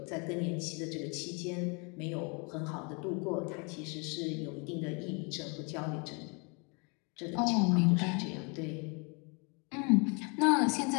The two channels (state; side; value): quieter; right; 33.0 dB